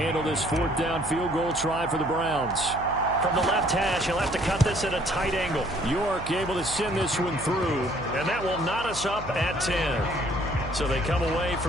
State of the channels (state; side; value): noise; right; hum, 11 dB below the sound